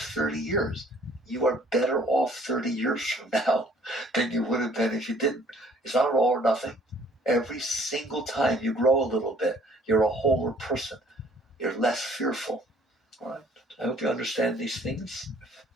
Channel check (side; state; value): both; normal; correlation 0.59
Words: 30 years. You are better off 30 years from now than you would have been if you didn't. It's not all or nothing. Every single time you grow a little bit, you're a wholer person. You're less fearful. All right? I hope you understand these things.